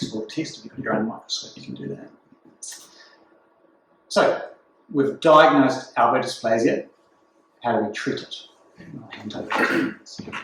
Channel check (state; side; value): identical; both; correlation 1.00